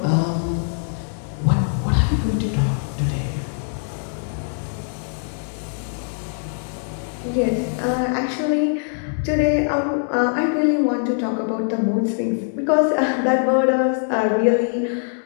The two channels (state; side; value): silent; right; digital silence